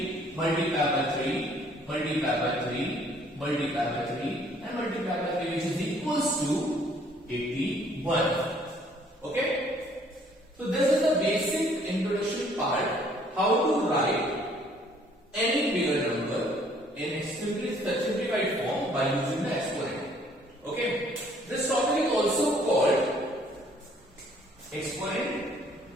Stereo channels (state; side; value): normal; both; correlation 0.61